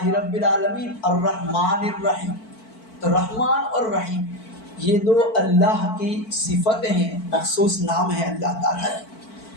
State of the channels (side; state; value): right; late; 4.5 ms